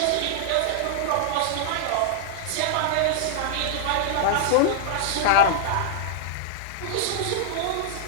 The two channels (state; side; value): different; both; correlation -0.01